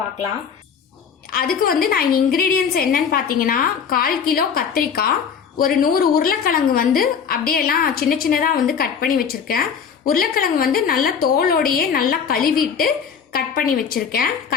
அதுக்கு வந்து நான் இன்கிரீடியன்ஸ் என்னன்னு பார்த்தீங்கன்னா 1/4 கிலோ கத்திரிக்காய், ஒரு 100 உருளைக்கிழங்கு வந்து அப்படியே எல்லாம் சின்ன சின்னதாக வந்து கட் பண்ணி வச்சிருக்கேன். உருளைக்கிழங்கு வந்து நல்லா தோலோடையே நல்லா கழுவிட்டு கட் பண்ணி வச்சிருக்கேன்.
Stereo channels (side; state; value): right; quieter; 6.9 dB